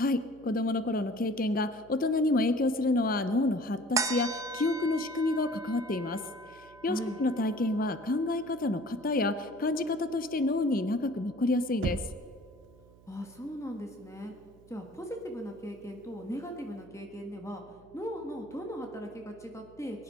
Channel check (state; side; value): noise; right; hum, 25 dB below the sound